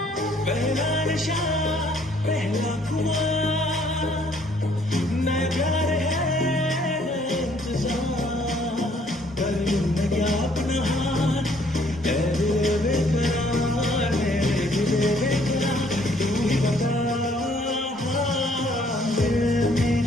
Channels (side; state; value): both; normal; correlation 0.64